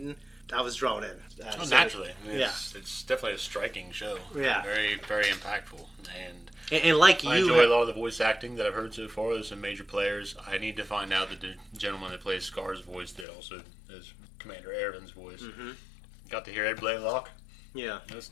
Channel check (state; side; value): drops out; right; at 13.2 s